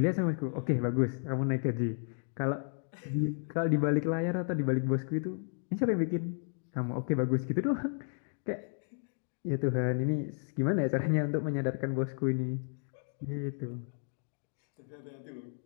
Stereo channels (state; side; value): silent; right; 56 dB below the other